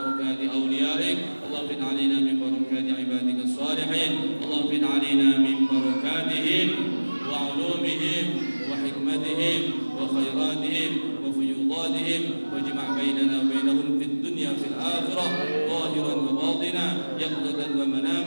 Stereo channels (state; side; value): inverted; both; correlation -1.00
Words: أوليائك اللهم انفذ علينا من بركات عبادك الصالحين اللهم انفذ علينا من بركاتهم وعلومهم وحكمتهم وخيراتهم وفيوضاتهم واجمع بيننا وبينهم في الدنيا في الآخرة ظاهرا وباطنا يقظة